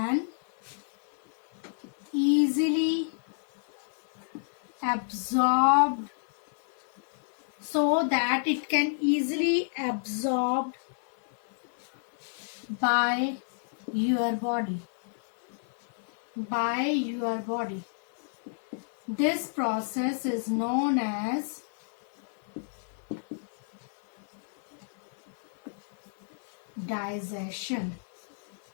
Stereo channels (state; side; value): silent; right; 58 dB below the other